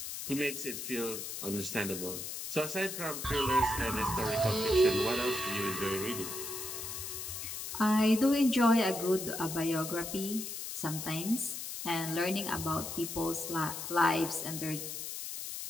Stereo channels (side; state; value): left; noise; hiss, 6 dB below the sound